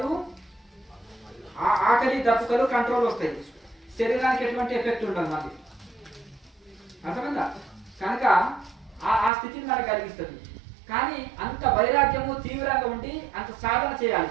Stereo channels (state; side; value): drops out; left; at 9.3 s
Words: ఆకలి దప్పుకలు కంట్రోల్ వస్తాయి, శరీరానికి ఎటువంటి ఎఫెక్ట్ ఉండదు మళ్ళీ. అర్థమైందా? కనుక ఆ స్థితిని మనకు కలిగిస్తుంది. కానీ అంత వైరాగ్యము తీవ్రంగా ఉండి అంత సాధన చేయాలి.